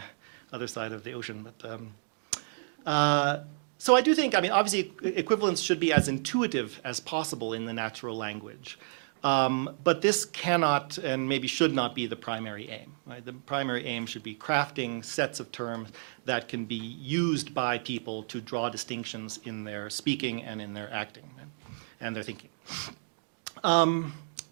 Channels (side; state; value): left; silent; digital silence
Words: other side of the ocean. So I do think, obviously equivalence should be as intuitive as possible in the natural language. But this cannot and maybe should not be the primary aim. Right? The primary aim should be crafting sets of terms that can be used by people to draw distinctions in their speaking and in their acting and their thinking.